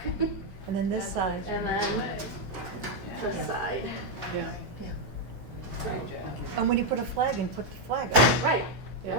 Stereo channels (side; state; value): left; late; 16 ms